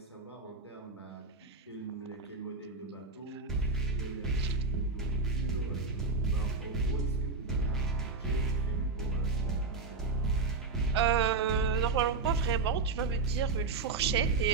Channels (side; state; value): left; quieter; 4.1 dB